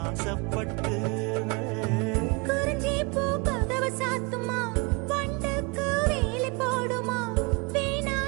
குறிஞ்சி பூ கதவை சாத்துமா, வண்டுக்கு வேலை போடுமா,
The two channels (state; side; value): quieter; left; 29.1 dB